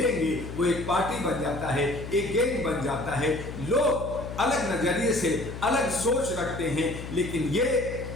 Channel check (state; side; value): noise; left; hum, 9 dB below the sound